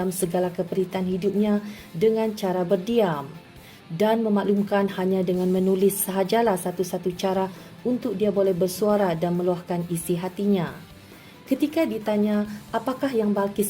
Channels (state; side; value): identical; both; correlation 1.00